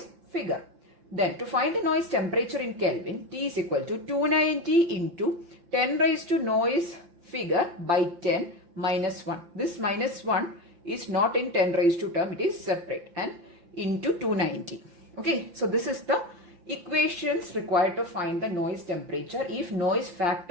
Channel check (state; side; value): late; left; 5.8 ms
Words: figure. Then to find the noise temperature in Kelvin, T is equal to 290 into 10 raised to noise figure by 10 minus 1. This minus 1 is not in 10 raised to term, it is separate, and into 290. Okay, so this is the equations required to find the noise temperature if noise